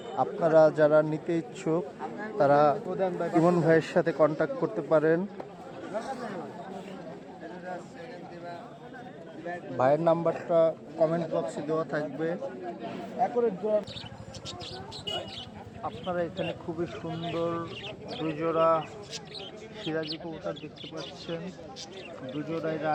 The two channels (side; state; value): both; identical; correlation 1.00